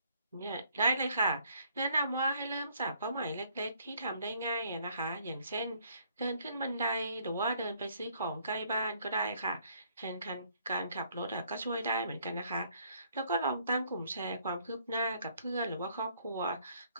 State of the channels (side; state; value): both; inverted; correlation -0.65